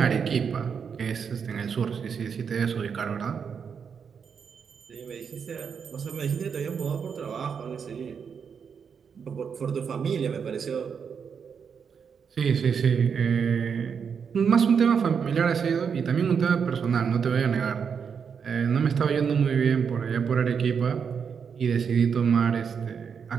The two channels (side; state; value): left; quieter; 6.6 dB